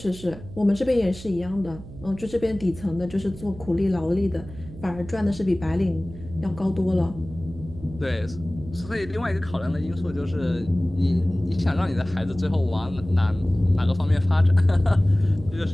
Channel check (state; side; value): noise; right; hum, 15 dB below the sound